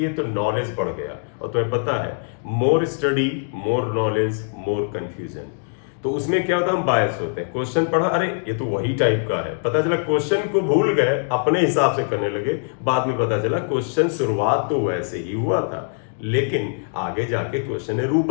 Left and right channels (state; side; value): silent; right; digital silence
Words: तो नॉलेज बढ़ गया। और तुम्हें पता है, more study more knowledge more confusion. तो उसमें क्या होता है, हम बायस होते हैं। क्वेश्चन पढ़ा, अरे ये तो वही टाइप का है, पता चला क्वेश्चन को भूल गए, अपने हिसाब से करने लगे। बाद में पता चला क्वेश्चन शुरुआत तो वैसे ही हुआ था, लेकिन आगे जाके क्वेश्चन ने रूप